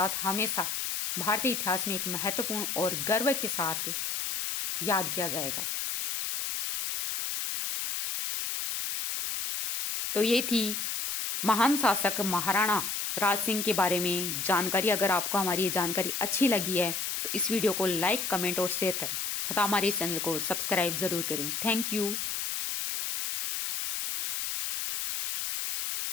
हमेशा भारतीय इतिहास में एक महत्वपूर्ण और गर्व के साथ याद किया जाएगा। तो ये थी महान शासक महाराणा राज सिंह के बारे में जानकारी। अगर आपको हमारी ये जानकारी अच्छी लगी है तो इस वीडियो को लाइक, कमेंट और शेयर करें तथा हमारे चैनल को सब्सक्राइब जरूर करें। Thank you.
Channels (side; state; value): left; noise; hiss, 2 dB below the sound